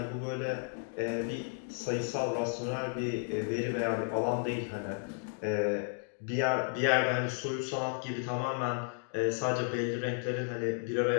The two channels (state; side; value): silent; right; 56 dB below the other